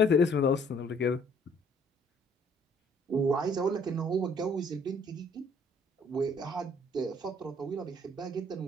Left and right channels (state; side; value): normal; both; correlation 0.61